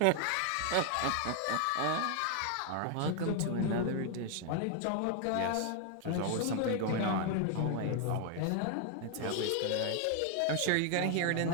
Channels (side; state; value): both; different; correlation 0.00